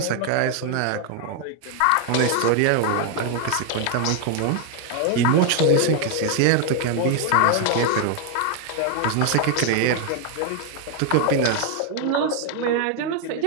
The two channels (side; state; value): both; different; correlation 0.00